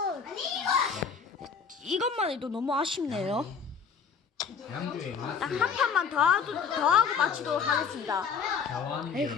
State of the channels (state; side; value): quieter; right; 6.2 dB